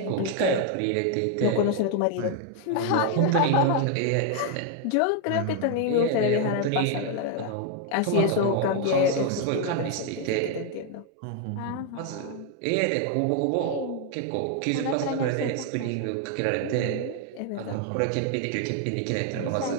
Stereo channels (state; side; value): different; both; correlation 0.00